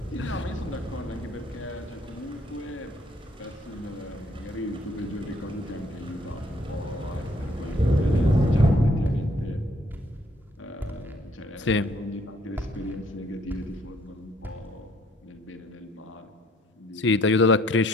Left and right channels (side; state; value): both; normal; correlation 0.64